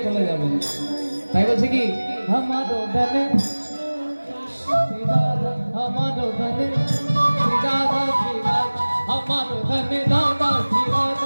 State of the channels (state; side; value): inverted; both; correlation -1.00